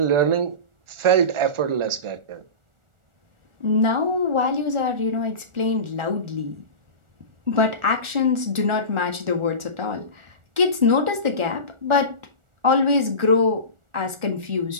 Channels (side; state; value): left; late; 1.4 ms